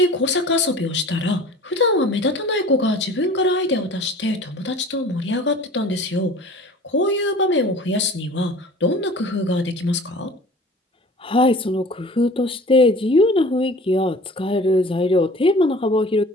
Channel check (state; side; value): normal; both; correlation 0.44